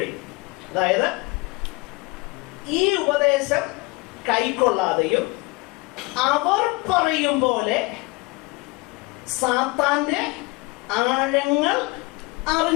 അതായത് ഈ ഉപദേശം കൈക്കൊള്ളാതെയും അവർ പറയും പോലെ സാത്താന്റെ ആഴങ്ങൾ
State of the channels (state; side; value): quieter; right; 24.9 dB